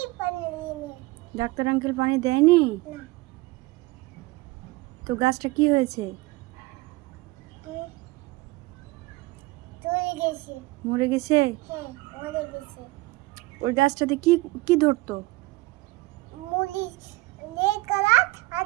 ডাক্তার আঙ্কেল পানি দেয়নি? তো গাছটা কি হয়েছে? মরে গেছে? ওই গাছটাতে কি কি ধরতো?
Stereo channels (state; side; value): quieter; left; 21.4 dB